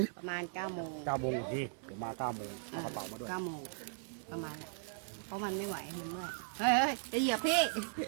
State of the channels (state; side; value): silent; left; digital silence